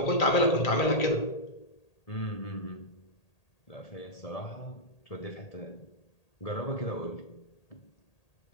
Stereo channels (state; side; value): late; right; 1.8 ms